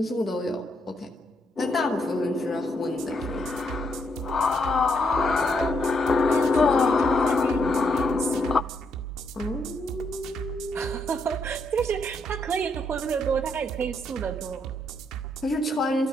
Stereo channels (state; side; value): normal; both; correlation 0.75